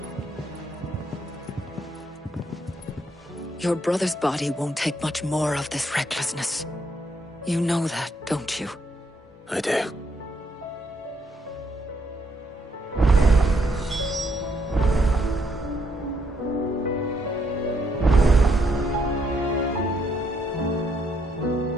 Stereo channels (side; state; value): both; normal; correlation 0.74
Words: Your brother's body won't take much more of this recklessness. You know that, don't you? I do.